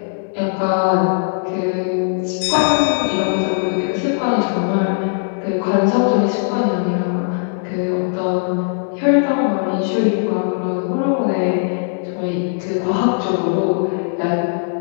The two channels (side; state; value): right; silent; digital silence